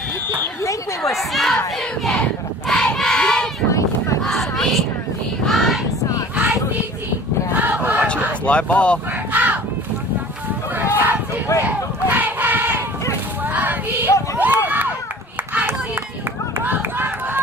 You think we were seeing? Watch it, it's live ball.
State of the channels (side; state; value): both; normal; correlation 0.45